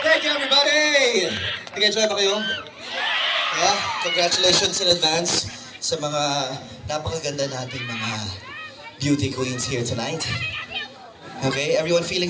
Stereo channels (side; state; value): both; identical; correlation 1.00